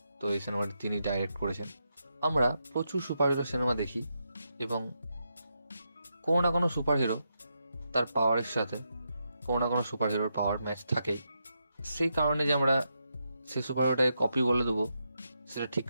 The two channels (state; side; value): inverted; both; correlation -0.84